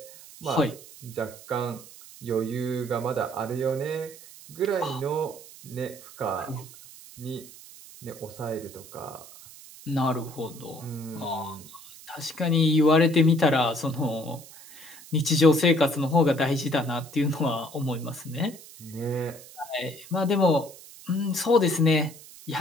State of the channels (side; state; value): right; noise; hiss, 18 dB below the sound